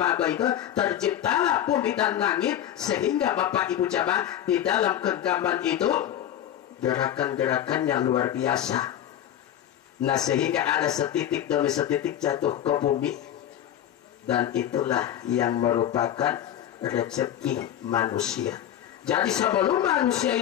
itu terciptalah bumi dan langit sehingga Bapak Ibu jamaah di dalam genggaman itu gerakan-gerakannya luar biasa. Nah sehingga ada setitik demi setitik jatuh ke bumi, dan itulah yang merupakan rezeki manusia. Jadi sebelum manusia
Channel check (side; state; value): right; quieter; 11.0 dB